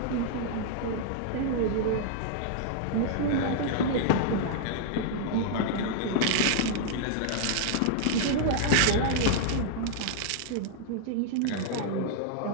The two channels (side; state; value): both; different; correlation -0.01